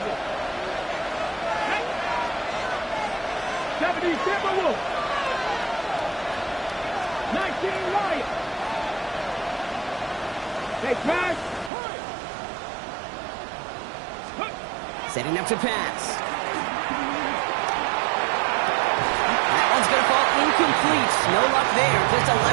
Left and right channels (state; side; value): drops out; left; at 11.7 s